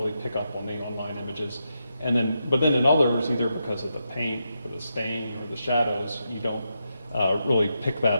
pick up on the online images. But then in others, either because of the paint or the stain or the shadows, you don't really pick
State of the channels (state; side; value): inverted; both; correlation -0.85